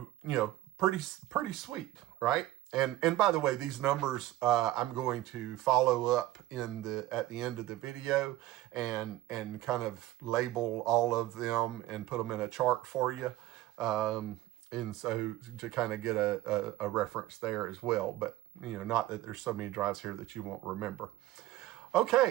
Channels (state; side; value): quieter; left; 15.4 dB